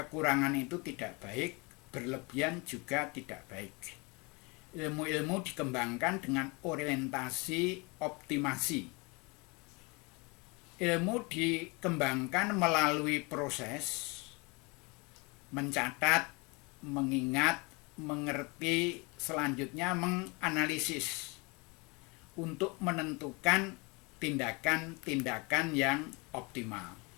itu tidak baik, berlebihan juga tidak baik. Ilmu-ilmu dikembangkan dengan orientasi optimasi. Ilmu dikembangkan melalui proses mencatat, mengingat, mengerti, selanjutnya menganalisis untuk menentukan tindakan-tindakan yang optimal.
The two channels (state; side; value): quieter; right; 28.3 dB